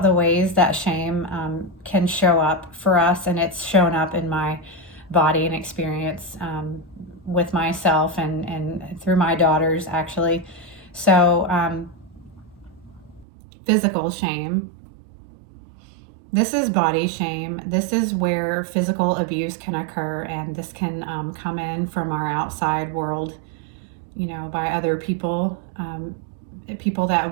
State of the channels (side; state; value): left; drops out; at 13.2 s